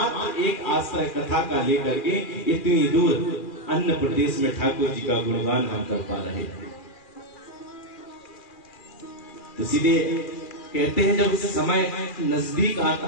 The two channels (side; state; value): right; late; 2.4 ms